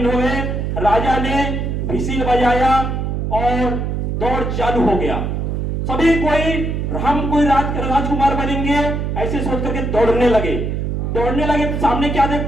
हो गए। राजा ने विसिल बजाया और दौड़ चालू हो गया। सभी कोई राजकुमार बनेंगे ऐसे सोच करके दौड़ने लगे। तो सामने क्या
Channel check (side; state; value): right; noise; hum, 1 dB below the sound